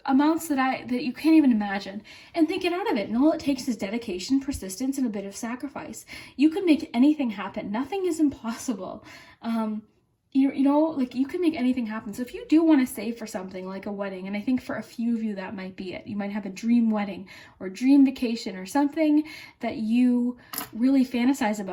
amounts that you can't even imagine, and they get out of it, and all it takes is dedication, persistence, and a bit of sacrifice. You can make anything happen. Nothing is impossible. You know, like, you can make anything happen. So if you do want to save for something like a wedding, and I think for a few of you that might be it, you might have a dream wedding or dream vacation or something that you really fantasize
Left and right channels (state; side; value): identical; both; correlation 1.00